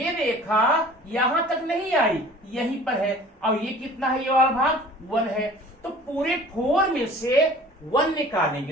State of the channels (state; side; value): normal; both; correlation 0.46